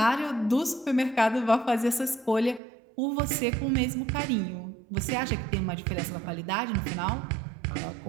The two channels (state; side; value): drops out; left; at 2.6 s